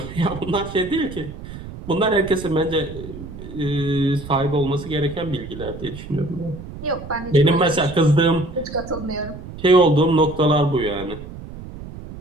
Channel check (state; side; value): noise; right; rumble, 12 dB below the sound